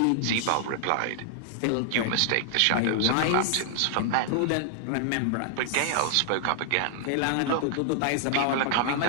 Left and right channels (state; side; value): different; both; correlation -0.01